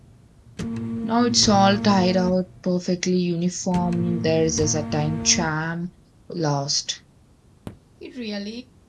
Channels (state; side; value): identical; both; correlation 1.00